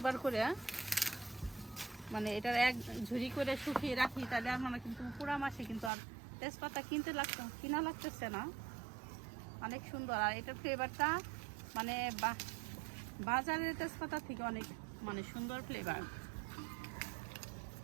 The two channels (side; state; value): left; drops out; at 5.9 s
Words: করে মানে এটার এক ঝুড়ি করে শুকিয়ে রাখি, তাহলে আমরা কিন্তু পুরো মাসে কিন্তু আর তেজপাতা কিনা লাগতেছে না। অনেক সুন্দর, আর এটার ফ্লেভারটা মানে বাজারের তেজপাতা থেকে অনেক মানে সুন্দর ফ্লেভার।